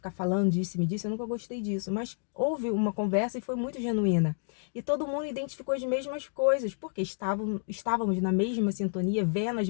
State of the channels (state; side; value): silent; right; digital silence